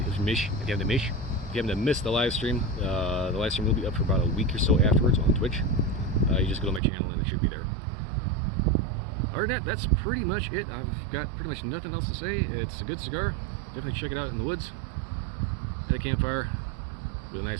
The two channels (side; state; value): left; drops out; at 6.8 s